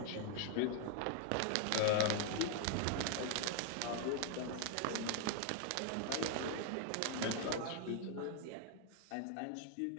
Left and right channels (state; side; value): different; both; correlation 0.01